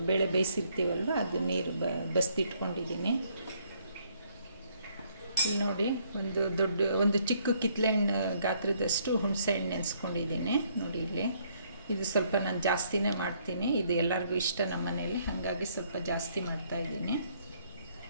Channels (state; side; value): inverted; both; correlation -0.67